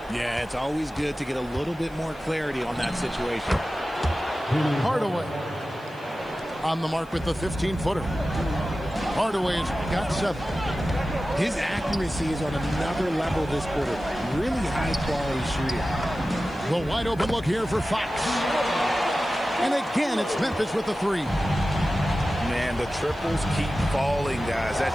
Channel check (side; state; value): right; noise; hiss, 29 dB below the sound